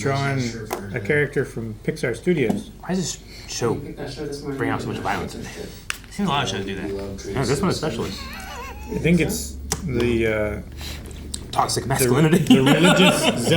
a character from Pixar Studios. Why does this show bring out so much violence in it? Seems a lot of shows do that. Yeah, this one especially. I think it's the Toxic masculinity. the religious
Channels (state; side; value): identical; both; correlation 1.00